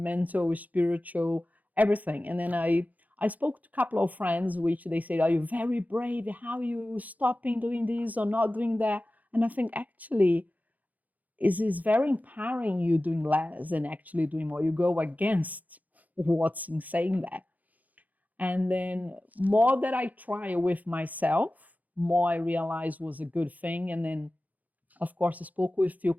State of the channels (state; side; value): late; left; 0.079 ms